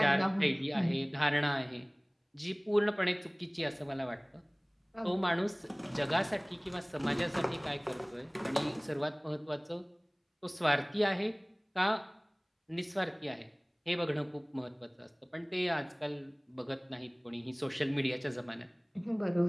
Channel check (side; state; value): both; identical; correlation 1.00